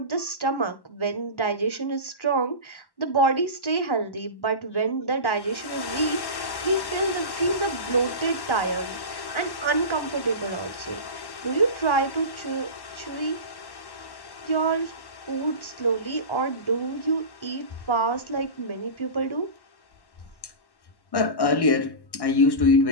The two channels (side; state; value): right; late; 1.1 ms